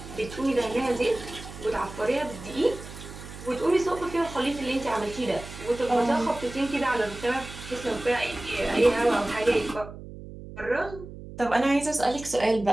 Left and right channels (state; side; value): noise; right; hum, 13 dB below the sound